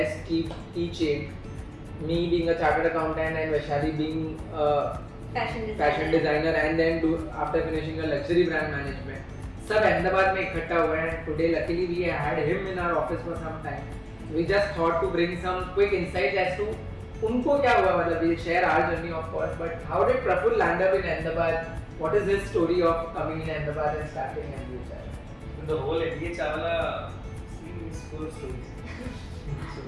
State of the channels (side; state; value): both; identical; correlation 1.00